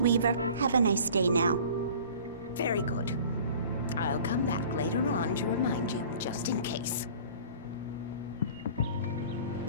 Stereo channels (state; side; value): inverted; both; correlation -0.46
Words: Have a nice day now. Very good. I'll come back later on to remind you, just in case.